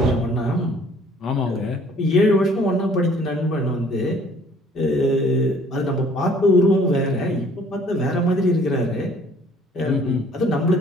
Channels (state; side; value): normal; both; correlation 0.56